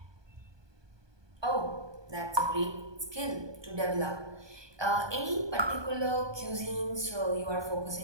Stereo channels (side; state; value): left; late; 1.2 ms